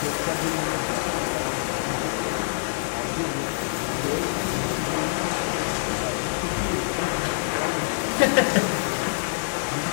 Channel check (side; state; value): right; silent; 61 dB below the other